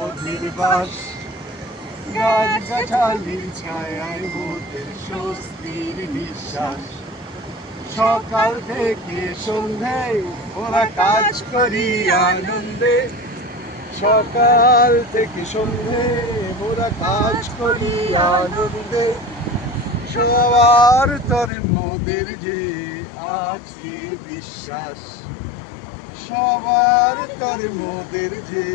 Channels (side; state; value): right; drops out; at 21.5 s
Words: বাস, গাছ গাছালির ছায়ায় মোদের স্বস্তির বিশ্বাস। সকাল থেকে সন্ধে ওরা কাজ করি আনন্দে, সকাল থেকে সন্ধে ওরা কাজ করি আনন্দে। সবার তরে মোদের যে আছে বিশ্বাস, সবার তরে মোদের যে